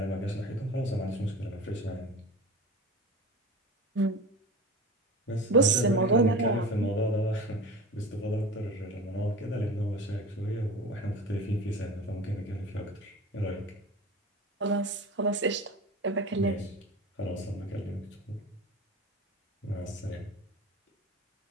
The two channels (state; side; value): normal; both; correlation 0.34